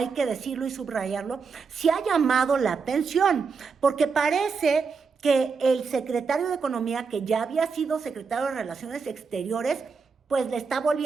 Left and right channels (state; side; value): quieter; left; 5.2 dB